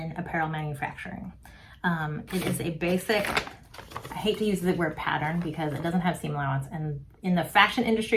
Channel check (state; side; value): identical; both; correlation 1.00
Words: apparel manufacturing. It is a basic, I hate to use the word pattern because it doesn't have seam allowance. And in the fashion